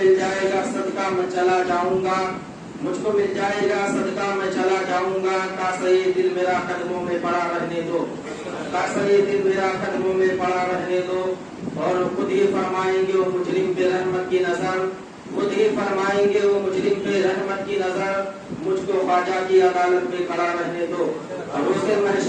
جائے گا صدقہ میں چلا جاؤں گا مجھ کو مل جائے گا صدقہ میں چلا جاؤں گا کاسا یہ دل میرا قدموں میں پڑا رہنے دو کاسا یہ دل میرا قدموں میں پڑا رہنے دو. اور خود ہی فرمائیں گے وہ مجرم پہ رحمت کی نظر خود ہی فرمائیں گے وہ مجرم پہ رحمت کی نظر مجھ کو خواجہ کی عدالت میں کھڑا رہنے دو. اور روز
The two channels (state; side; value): identical; both; correlation 1.00